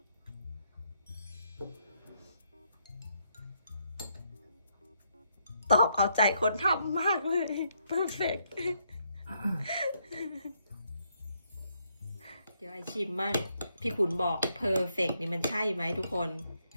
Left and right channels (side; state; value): both; inverted; correlation -0.75